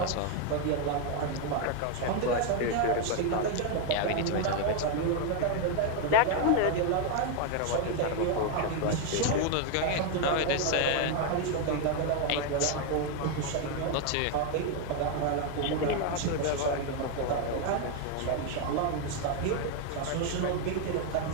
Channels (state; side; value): different; both; correlation 0.01